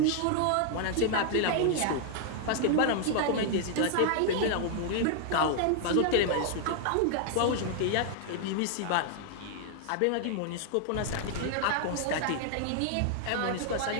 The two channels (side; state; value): both; different; correlation -0.01